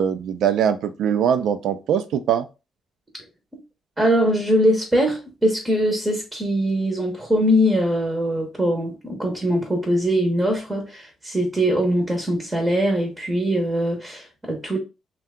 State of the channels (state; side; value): normal; both; correlation 0.71